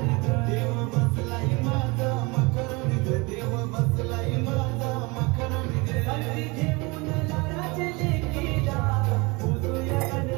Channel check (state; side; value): quieter; left; 26.4 dB